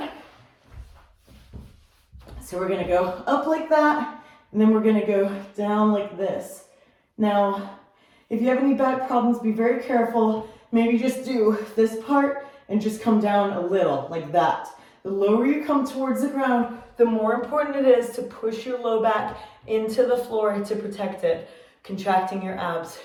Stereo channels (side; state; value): both; identical; correlation 1.00